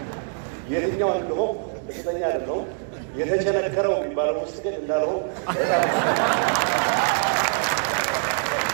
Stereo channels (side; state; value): left; silent; digital silence